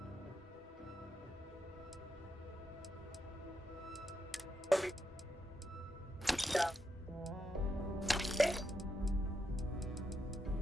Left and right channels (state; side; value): normal; both; correlation 0.83